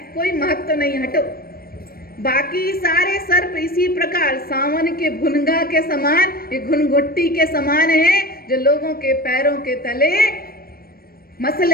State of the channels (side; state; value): right; late; 0.44 ms